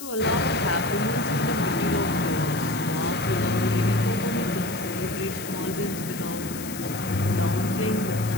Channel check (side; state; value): left; noise; hiss, 11 dB below the sound